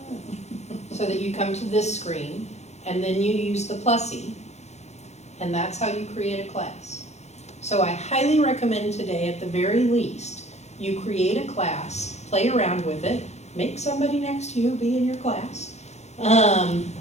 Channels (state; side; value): late; right; 0.32 ms